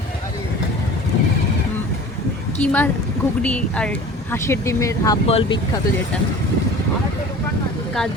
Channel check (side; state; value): both; normal; correlation 0.41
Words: কিমা ঘুগনি আর হাঁসের ডিমের হাফ বল বিখ্যাত, যেটা কাজ